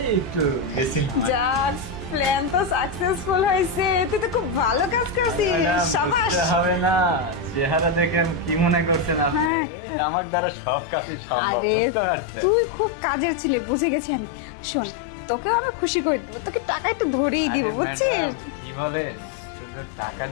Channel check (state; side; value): drops out; right; at 9.5 s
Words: একটু গেছিলাম। যাক, প্ল্যান তো সাকসেসফুল হয়েছে, তুই তো খুব ভালো কাজ করছিস, শাবাশ। হবে না, চেহারা দেখে কি মনে করছেন আপনি? হ্যাঁ। আমার দ্বারা সব কাজই সম্ভব। আরে বুঝতে পারছেন? তুই খুব কাজের ছিলে, বুঝে গেছি আমি। শোন, তোকেও আমি খুশি করে দেবো, তোকে টাকা একটু ধরেই দিব, আরে বুঝছিস? ম্যাডাম, কি বলে, শুধু টাকা